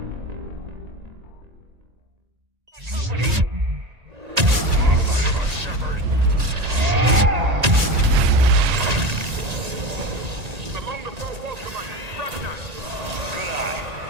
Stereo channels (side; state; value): left; late; 1.9 ms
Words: Along the far wall, Commander. Rachni. Good eye.